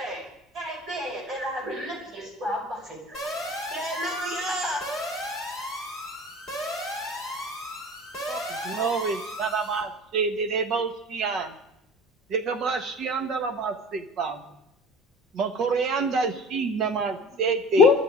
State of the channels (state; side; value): normal; both; correlation 0.40